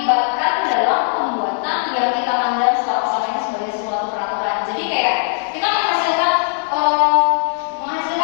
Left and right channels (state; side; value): silent; right; 56 dB below the other